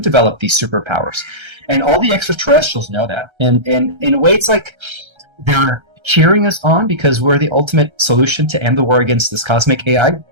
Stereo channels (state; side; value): late; left; 1.3 ms